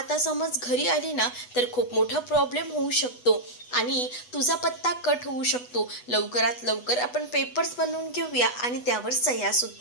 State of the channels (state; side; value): late; right; 8.1 ms